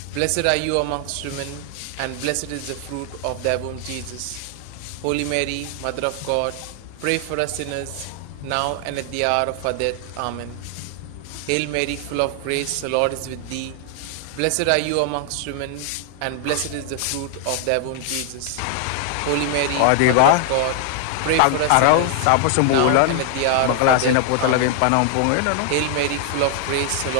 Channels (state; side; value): different; both; correlation 0.00